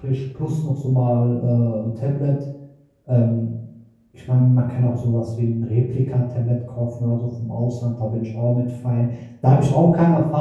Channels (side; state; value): both; identical; correlation 1.00